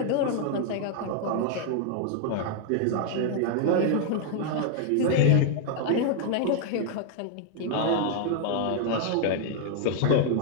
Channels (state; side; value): different; both; correlation 0.00